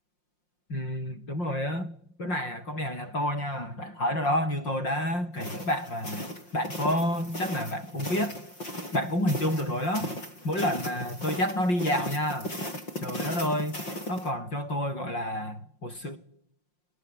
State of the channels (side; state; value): right; late; 5.6 ms